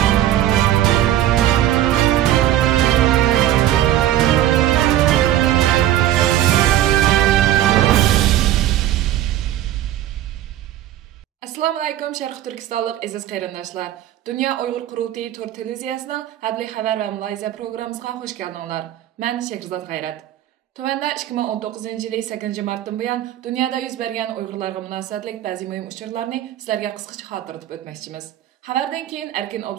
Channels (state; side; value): quieter; left; 12.6 dB